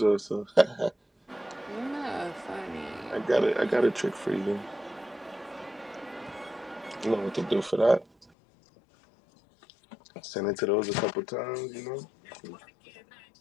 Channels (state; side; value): drops out; right; at 8.3 s